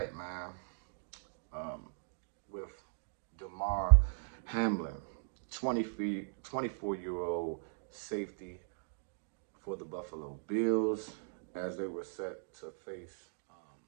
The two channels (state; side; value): silent; left; digital silence